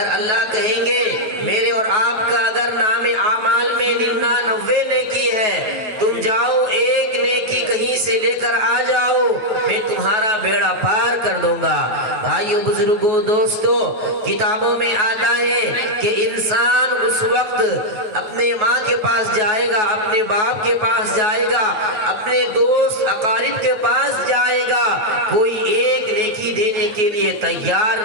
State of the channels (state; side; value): late; left; 9.3 ms